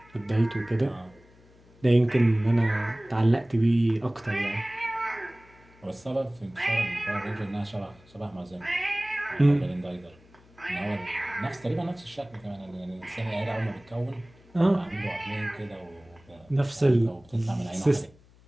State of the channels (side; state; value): left; noise; hum, 27 dB below the sound